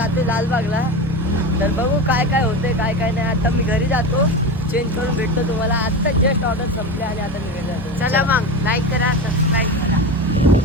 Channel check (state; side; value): normal; both; correlation 0.24